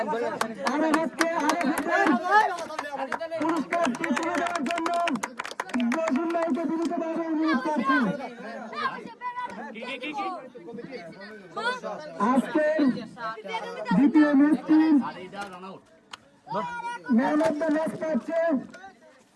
পুরস্কারটি তুলে দেওয়ার জন্য জসিমভাইকে বিনীতভাবে অনুরোধ করছি। আজকের দ্বিতীয় ম্যাচটি ম্যান অফ দ্য ম্যাচ পাচ্ছে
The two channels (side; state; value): both; identical; correlation 1.00